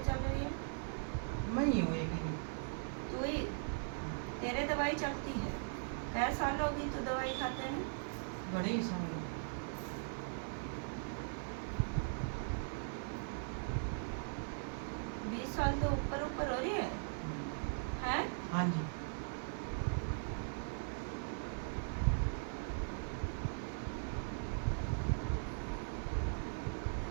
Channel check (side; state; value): left; silent; digital silence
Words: चल रही है? मैं ही हूँ एक ही। तू ही? तेरे दवाई चलती है? कै साल होगी तू दवाई खाते हैं? बड़े ही साल। 20 साल तो ऊपर ऊपर हो रही है। हैं? हाँ जी।